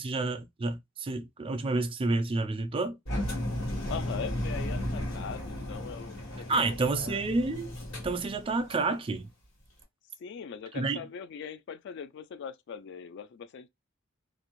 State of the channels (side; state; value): both; normal; correlation 0.50